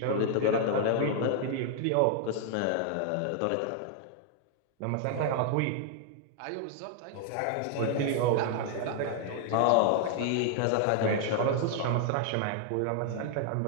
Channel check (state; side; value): different; both; correlation 0.00